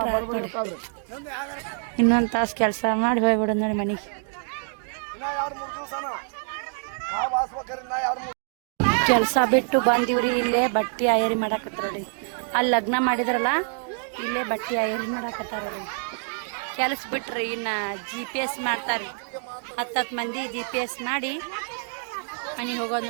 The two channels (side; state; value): left; silent; 58 dB below the other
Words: ಆಯ್ತು ನೋಡಿ ಇನ್ನೊಂದು ತಾಸು ಕೆಲಸ ಮಾಡಿ ಹೋಗ್ಬಿಡೋದು ನೋಡಿ ಮನೆಗೆ ಕೆಲಸ ಬಿಟ್ಟು ಬಂದಿವ್ರಿ ಇಲ್ಲೇ ಬಟ್ಟೆ ಆಯರಿ ಮಾಡಾಕತ್ತಾರ ನೋಡಿ ಅಲ್ಲಿ ಲಗ್ನ ಮಾಡಿದ್ರಲ್ಲ ಇಲ್ಲೇ ಬಟ್ಟೆ ಆಯರಿ ಮಾಡಾಕತ್ತಾರ ನೋಡಿ ಕೆಲಸ ಬಿಟ್ರಿ ಇನ್ನು GPS ಮಾಡ್ತಾರೆ 10 ಮಂದಿ GPS ಮಾಡಿ ಮನೆಗೆ ಹೋಗೋದು